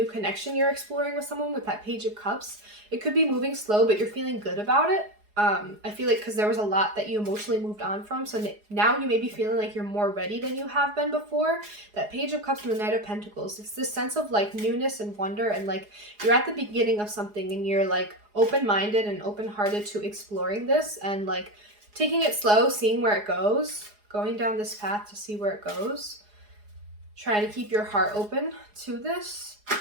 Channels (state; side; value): late; left; 4.8 ms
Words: connection you're exploring with someone with that Page of Cups. It could be moving slow, but you're feeling good about it. I feel like because there was a lot that you emotionally moved on from, so now you may be feeling like you're more ready than you have been before. That Page of Cups and the Knight of Pentacles, it's this sense of like newness and wonder, and like you're at the beginning of something and you're like open-minded and open-hearted to exploring this and like taking it slow, seeing where it goes, going down this path to see where it goes. Trying to keep your heart open to this.